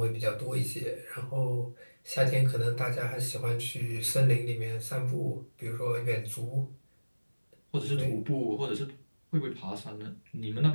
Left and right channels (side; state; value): both; inverted; correlation -1.00